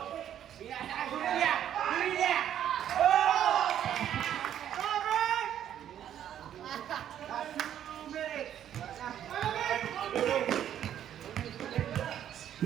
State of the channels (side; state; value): left; quieter; 10.4 dB